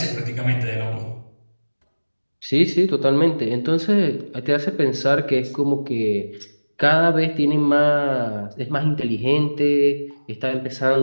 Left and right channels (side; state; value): both; inverted; correlation -1.00